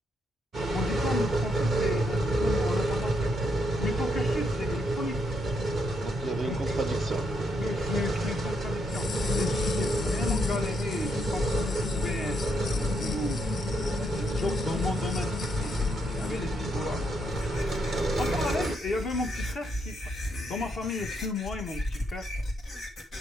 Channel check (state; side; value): normal; both; correlation 0.77